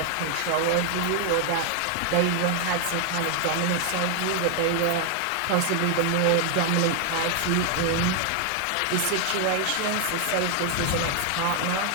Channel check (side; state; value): both; different; correlation 0.00